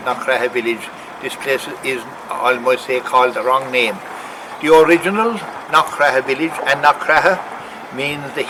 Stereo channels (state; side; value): identical; both; correlation 1.00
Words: Knockraha village. This place is, I must say, called the wrong name. The original Knockraha village, and Knockraha means the